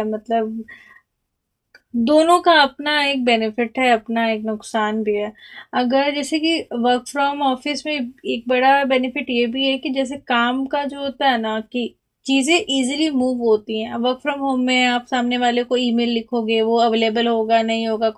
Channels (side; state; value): both; identical; correlation 1.00